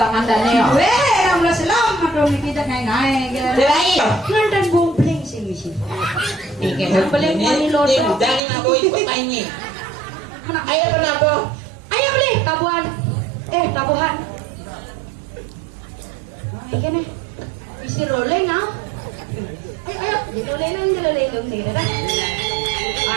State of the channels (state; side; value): drops out; left; at 8.4 s